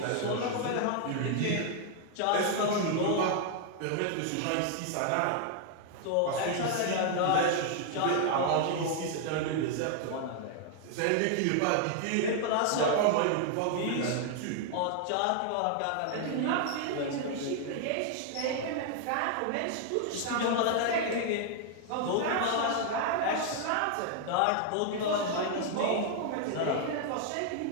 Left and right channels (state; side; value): different; both; correlation 0.00